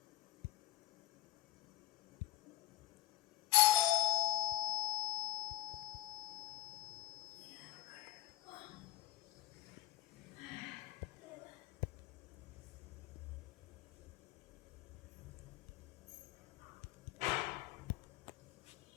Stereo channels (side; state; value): right; quieter; 14.8 dB